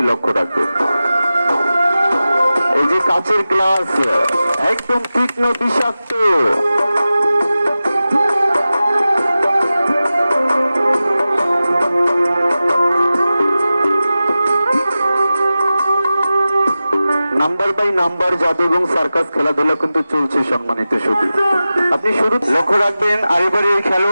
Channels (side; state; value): both; inverted; correlation -0.95